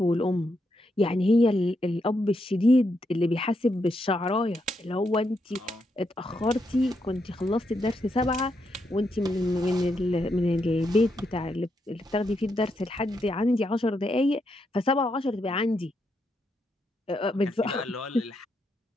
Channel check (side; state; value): both; normal; correlation 0.81